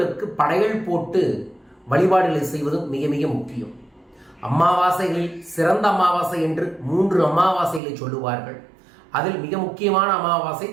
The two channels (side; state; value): left; drops out; at 7.8 s